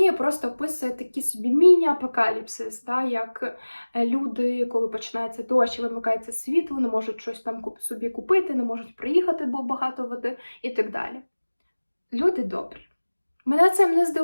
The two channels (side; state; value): both; inverted; correlation -1.00